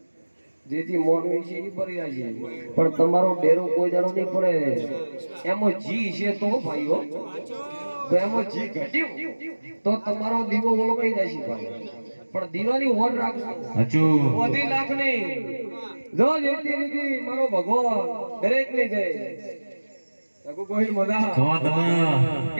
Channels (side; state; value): both; inverted; correlation -1.00